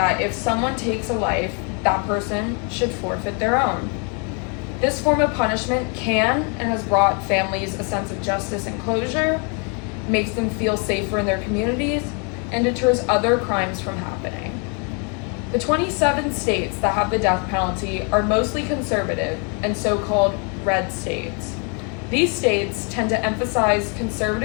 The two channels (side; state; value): right; quieter; 37.0 dB